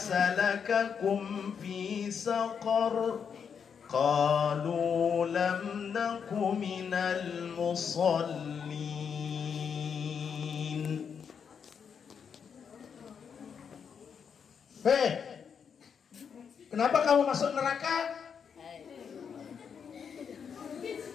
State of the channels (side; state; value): right; quieter; 6.9 dB